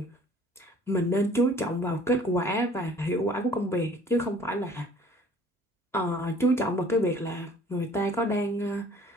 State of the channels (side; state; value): both; normal; correlation 0.53